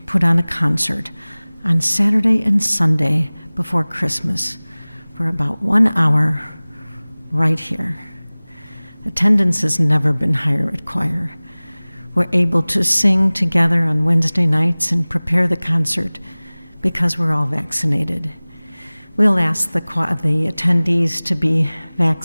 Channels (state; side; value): inverted; both; correlation -1.00